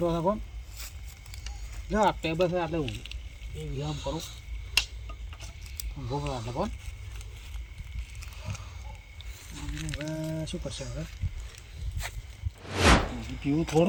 હતા કોમ જો આ ટેબલ છે આટલે હું એ વિરામ કરું ભોગવા આટલે કોણ હવે શું કરશે હવે પીવું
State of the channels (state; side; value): identical; both; correlation 1.00